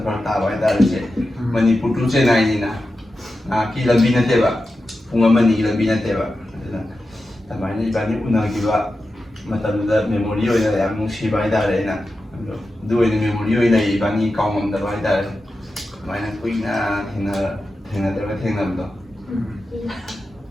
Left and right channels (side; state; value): both; normal; correlation 0.91